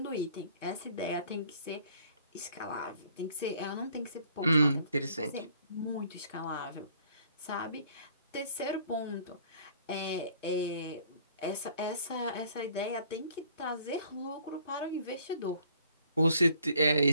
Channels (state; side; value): inverted; both; correlation -0.59